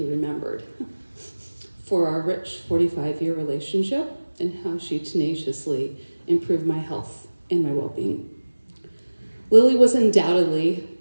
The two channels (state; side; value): inverted; both; correlation -1.00